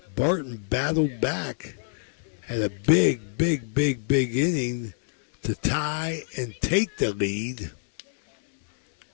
Barton battled back, had a big inning to tie and take the lead.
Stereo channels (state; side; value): silent; right; digital silence